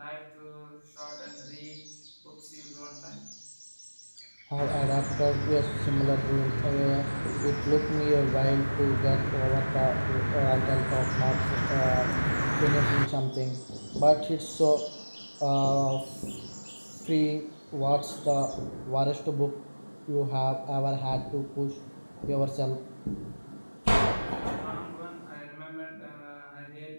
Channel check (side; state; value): both; inverted; correlation -1.00